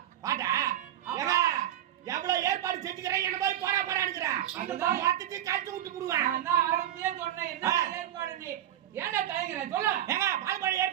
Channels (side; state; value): left; quieter; 11.9 dB